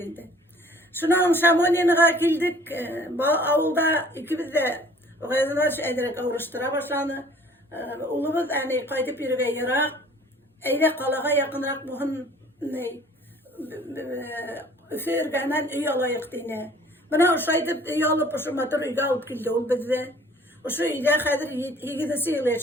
Şunun Şamoni'ne kildik, bu avulda ikimiz de o kadar ederek uğraştıra başlandı. Ulumuz yani kaydıp yürüge yarak, eyle kalağa yakınrak muhun üfürgenen üy alayık dine. Bana o şaydıp üy alıp o şu matur üyge alıp kildi ol bizde. O şu üyde kadir yigidisi yıl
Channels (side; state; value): both; normal; correlation 0.53